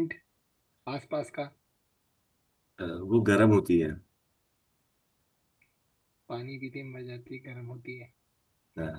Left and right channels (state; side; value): identical; both; correlation 1.00